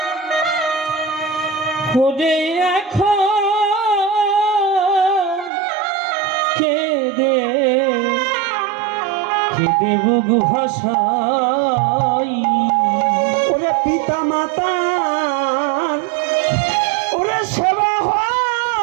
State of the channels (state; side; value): drops out; left; at 5.5 s